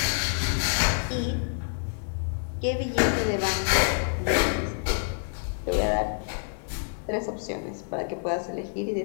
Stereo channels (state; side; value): silent; right; digital silence